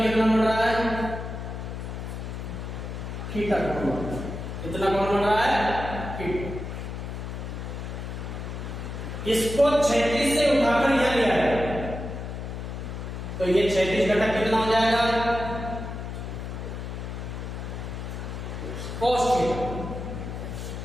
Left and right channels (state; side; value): noise; left; hum, 7 dB below the sound